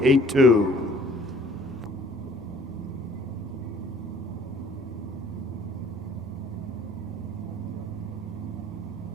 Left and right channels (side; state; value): both; normal; correlation 0.55